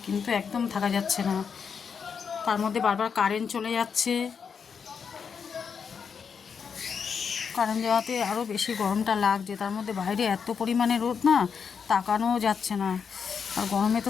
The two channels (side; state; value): right; quieter; 6.4 dB